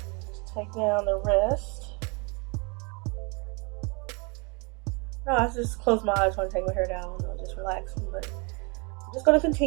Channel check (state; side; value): quieter; left; 31.9 dB